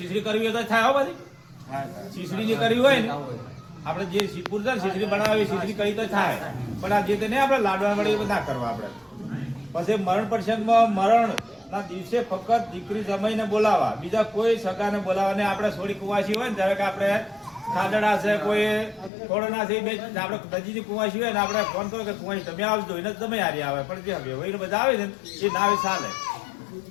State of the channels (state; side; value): drops out; right; at 19.1 s